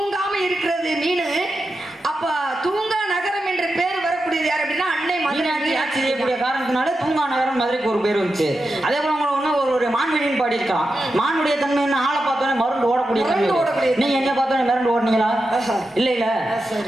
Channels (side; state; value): both; normal; correlation 0.89